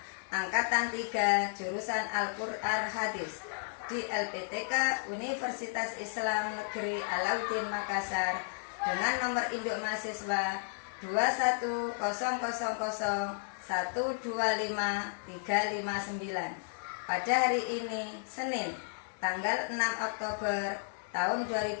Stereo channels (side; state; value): right; silent; digital silence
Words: Angkatan 3, jurusan Al-Quran Hadis di LPTK Universitas Islam Negeri Alauddin Makassar dengan nomor induk mahasiswa 21000125359. Pada hari ini, Senin, tanggal 6 Oktober tahun